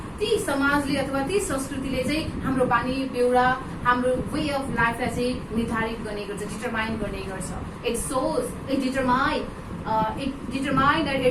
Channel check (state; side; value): identical; both; correlation 1.00